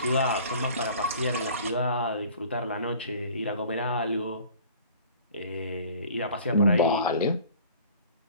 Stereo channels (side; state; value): both; inverted; correlation -0.48